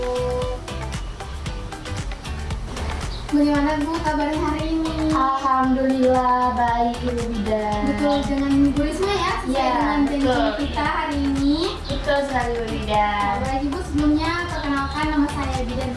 Bagaimana Bu kabarnya hari ini? Alhamdulillah baik Ibu Bidan. Betul dengan Bu Risma ya? Sesuai Iya, dengan janji betul. kita hari ini. Betul sekali Ibu Bidan. Baik Ibu, sebelumnya perkenalkan nama saya Bidan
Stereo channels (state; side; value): identical; both; correlation 1.00